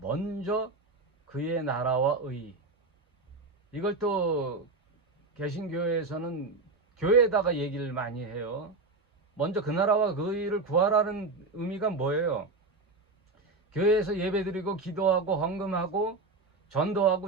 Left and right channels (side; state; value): left; quieter; 3.5 dB